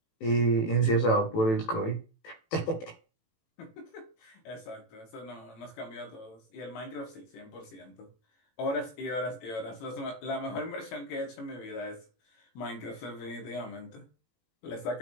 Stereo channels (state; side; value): late; right; 18 ms